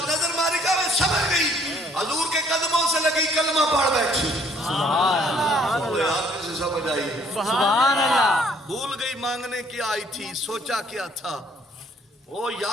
نظر ماری کا میں سمجھ گئی, حضور کے قدموں سے لگی کلمہ پڑھ بیٹھی. آپ سے سمجھ آئی. سبحان اللہ. بھول گئی مانگنے کیا آئی تھی, سوچا کیا تھا. وہ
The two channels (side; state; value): both; normal; correlation 0.62